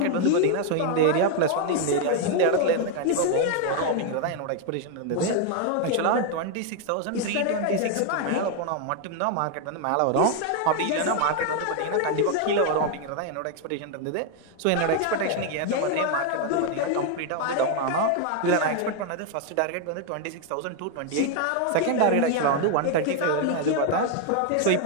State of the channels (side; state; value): both; different; correlation 0.00